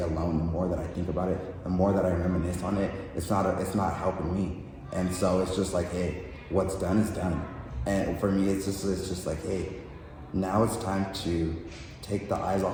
the more that I think about it, the more that I reminisce on it, it's not helping me. And so it's just like, hey, what's done is done. And for me, it's just like, hey, now it's time to take the eyes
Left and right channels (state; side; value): identical; both; correlation 1.00